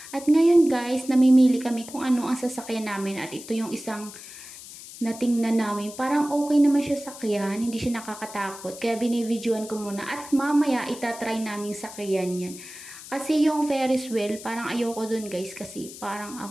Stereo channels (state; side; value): noise; left; hiss, 15 dB below the sound